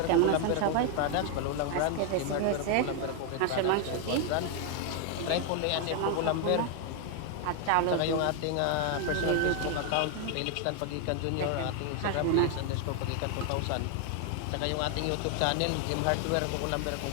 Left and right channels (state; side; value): different; both; correlation 0.00